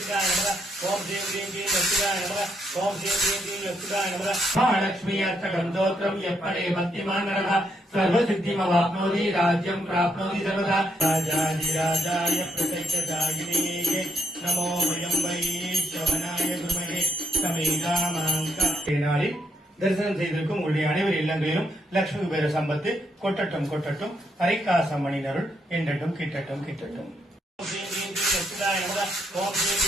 தரிசனம் செய்திருக்கும் உங்களுடைய அனைவர் இல்லங்களிலும் லட்சுமி குபேர சம்பத்து கொட்டட்டும் கொட்டட்டும் ஹரிகாசம் மணினருள் என்றட்டும் கிட்டட்டும் கிட்டட்டும்.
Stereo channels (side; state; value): both; normal; correlation 0.77